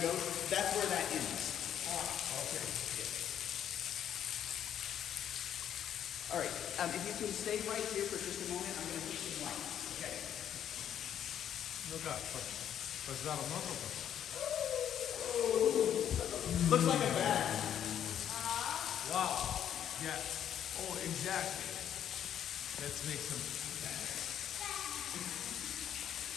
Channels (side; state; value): right; quieter; 9.9 dB